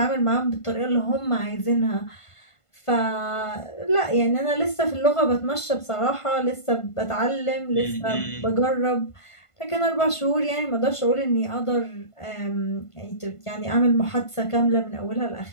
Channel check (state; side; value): late; right; 1.5 ms